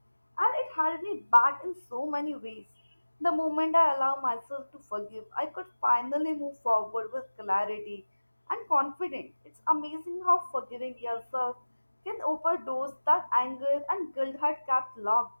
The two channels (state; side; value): inverted; both; correlation -1.00